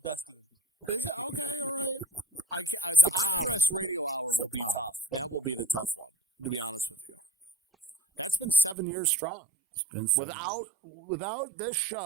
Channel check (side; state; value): left; drops out; at 8.8 s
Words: in here. Is it? Okay, all right. The IRS radio hour will be tough. That will be the tough one, to be honest with you. That's been 7 years strong. It's been 7 years. Without this